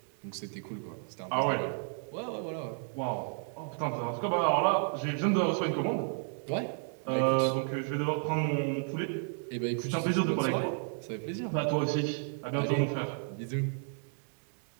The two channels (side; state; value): left; silent; 56 dB below the other